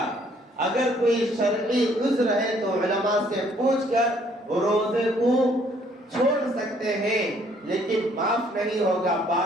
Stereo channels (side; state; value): both; normal; correlation 0.63